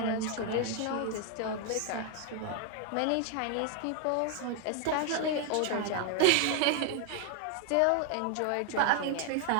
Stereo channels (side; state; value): both; different; correlation 0.00